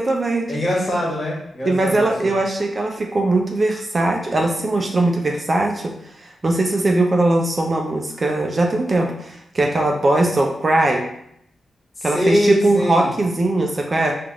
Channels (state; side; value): normal; both; correlation 0.90